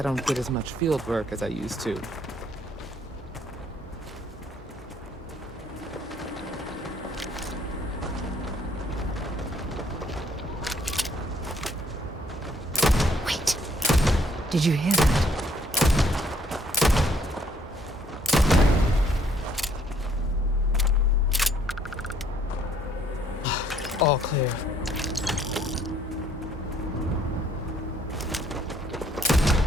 don't get as much field work as I used to. Wait. Did you hear that? All clear.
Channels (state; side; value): normal; both; correlation 0.65